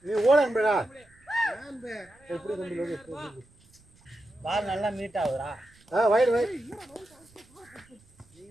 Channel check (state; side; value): noise; right; rumble, 30 dB below the sound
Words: ஓட அன்புடா எப்படி தம்பி பால் நல்லா மீட் ஆகுதுடா வைடு வை